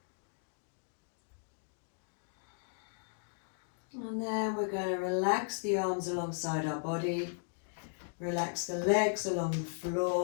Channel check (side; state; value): right; silent; digital silence